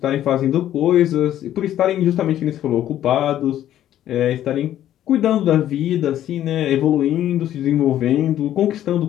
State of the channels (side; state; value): right; quieter; 11.9 dB